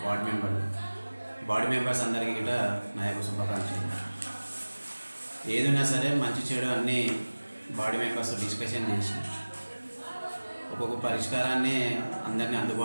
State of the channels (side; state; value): both; inverted; correlation -1.00